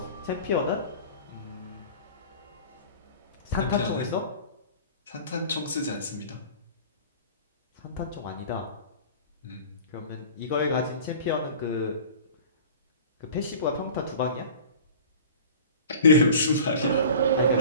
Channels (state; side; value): inverted; both; correlation -0.41